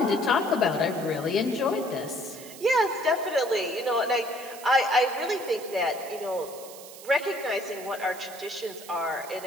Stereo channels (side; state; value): right; noise; hiss, 16 dB below the sound